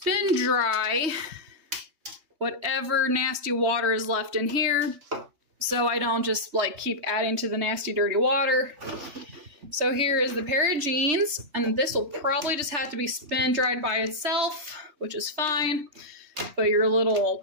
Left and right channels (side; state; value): left; late; 3.2 ms